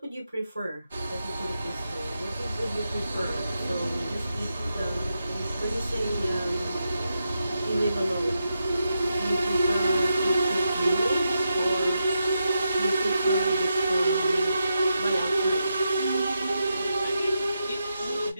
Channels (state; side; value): inverted; both; correlation -0.86